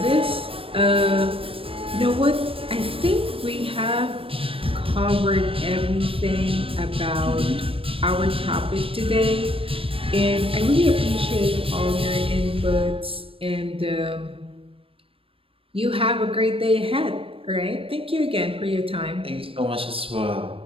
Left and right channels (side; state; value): left; late; 0.27 ms